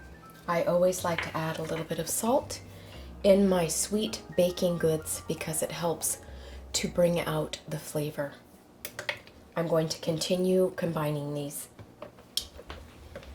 I always like to add a little bit of salt in my sweet baking goods because it helps to bring out the flavor. I'm going to continue combining these.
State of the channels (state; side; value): identical; both; correlation 1.00